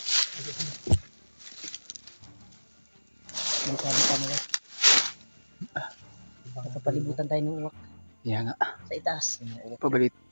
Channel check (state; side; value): inverted; both; correlation -1.00